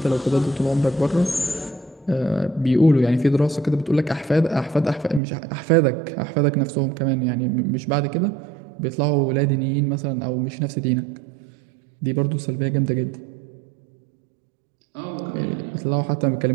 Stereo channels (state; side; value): drops out; left; at 5.2 s